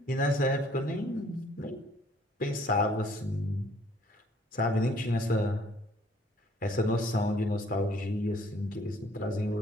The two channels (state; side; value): normal; both; correlation 0.60